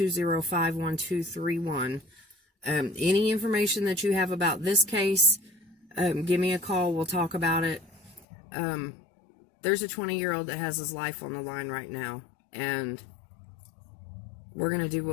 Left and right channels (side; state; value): right; drops out; at 8.2 s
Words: Any information that you have about this case, give me a call. We'll talk about it. There's a 20-year-old that has his life on the line right now, and we're going to do